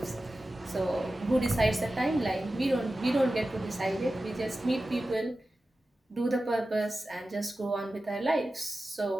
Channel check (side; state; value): both; normal; correlation 0.94